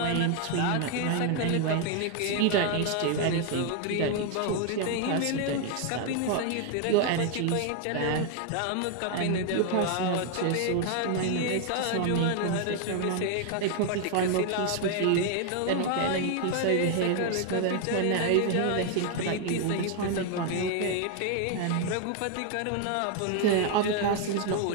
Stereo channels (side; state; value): both; different; correlation 0.00